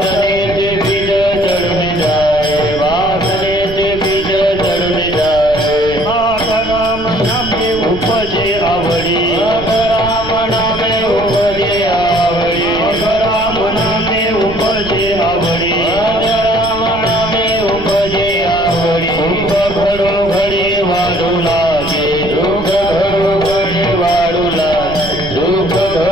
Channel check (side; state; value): right; noise; rumble, 12 dB below the sound